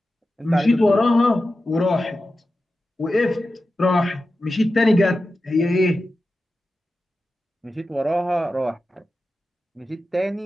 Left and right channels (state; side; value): normal; both; correlation 0.93